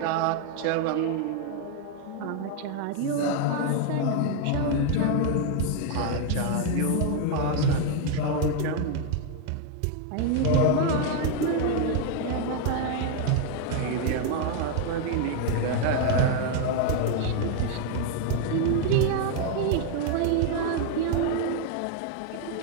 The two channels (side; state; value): both; different; correlation 0.00